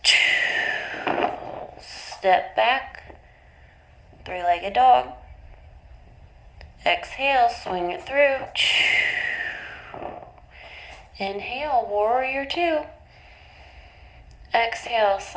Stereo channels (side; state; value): both; identical; correlation 1.00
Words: Step back, three-legged dog. Exhale, swing it through. Inhale, warrior two. Exhale,